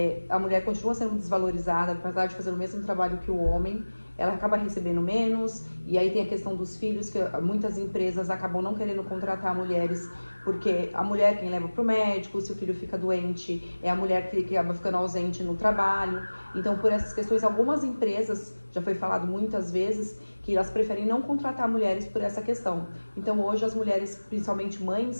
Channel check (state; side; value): inverted; both; correlation -1.00